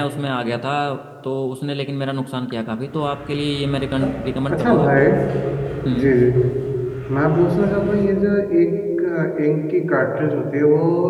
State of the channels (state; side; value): identical; both; correlation 1.00